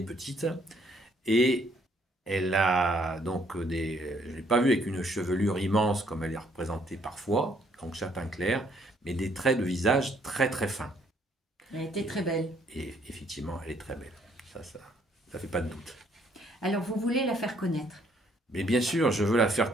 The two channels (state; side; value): normal; both; correlation 0.67